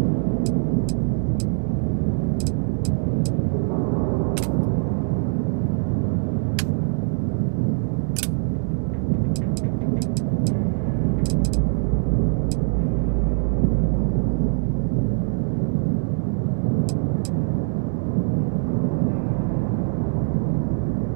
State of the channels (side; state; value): left; silent; 62 dB below the other